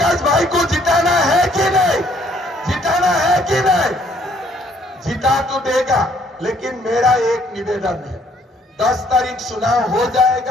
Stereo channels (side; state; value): both; normal; correlation 0.64